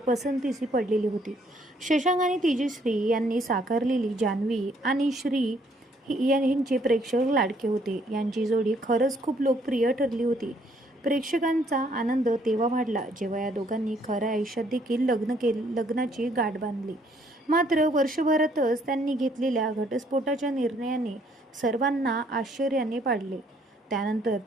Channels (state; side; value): normal; both; correlation 0.66